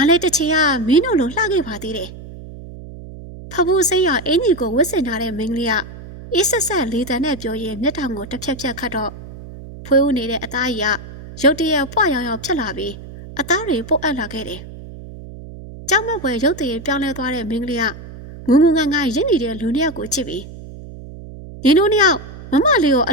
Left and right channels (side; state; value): right; noise; hum, 14 dB below the sound